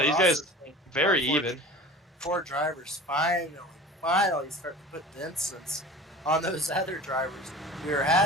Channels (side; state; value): both; normal; correlation 0.39